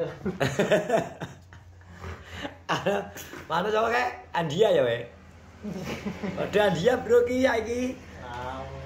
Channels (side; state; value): both; identical; correlation 1.00